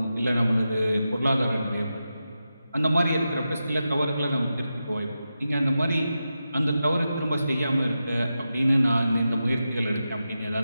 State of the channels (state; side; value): inverted; both; correlation -0.90